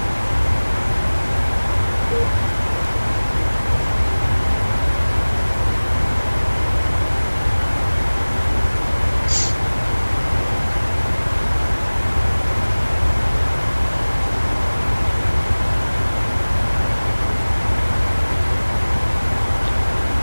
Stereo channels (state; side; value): inverted; both; correlation -1.00